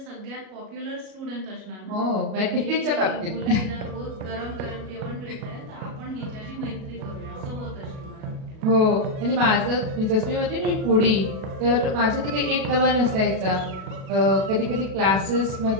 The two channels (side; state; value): left; late; 37 ms